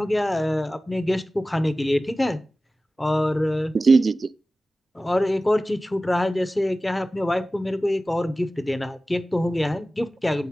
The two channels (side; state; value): both; normal; correlation 0.96